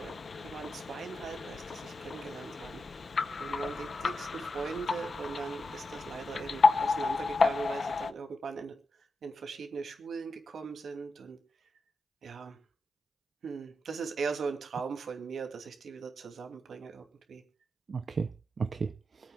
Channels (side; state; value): both; normal; correlation 0.88